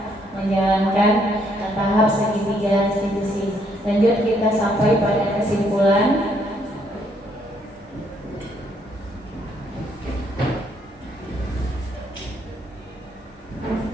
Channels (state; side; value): normal; both; correlation 0.70